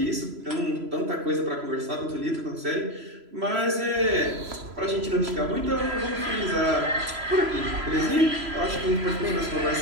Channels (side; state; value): left; late; 3.0 ms